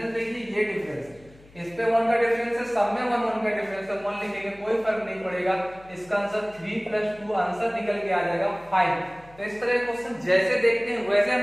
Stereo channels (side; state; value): left; noise; hum, 25 dB below the sound